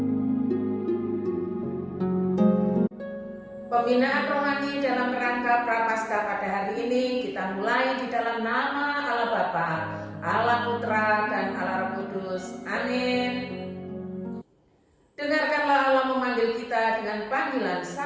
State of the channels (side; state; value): both; identical; correlation 1.00